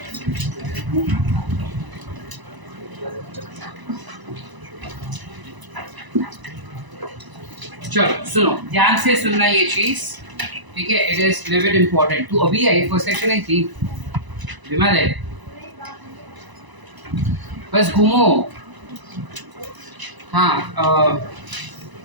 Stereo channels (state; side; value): late; left; 1.0 ms